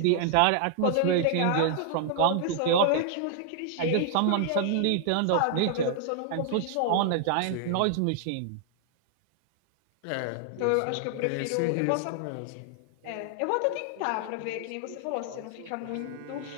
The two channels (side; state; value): both; different; correlation 0.00